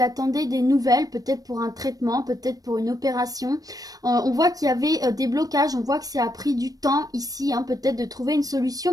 attendaient des nouvelles, peut-être pour un traitement, peut-être pour une opération. On voit qu'il y avait des blocages, on voit que ça a pris du temps ici, hein, peut-être de trouver une solution,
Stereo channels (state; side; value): late; left; 0.18 ms